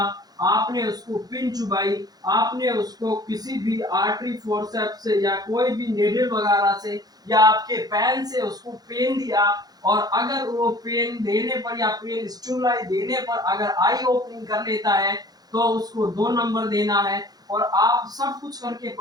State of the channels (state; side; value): late; left; 0.19 ms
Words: आपने उसको पिन चुबाई, आपने उसको किसी भी आर्टरी फोर्सेप्स से या कोई भी नेडल वगैरह से या आपके पेन से उसको पेन दिया, और अगर वो पेन देने पर या पेन स्टिमुलाई देने पर अगर आई ओपनिंग कर लेता है तो उसको 2 नंबर देना है। और आप सब कुछ करके